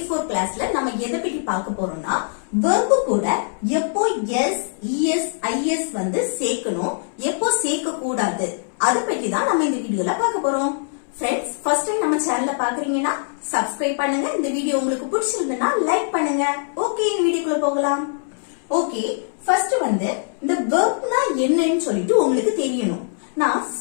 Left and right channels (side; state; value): right; silent; 64 dB below the other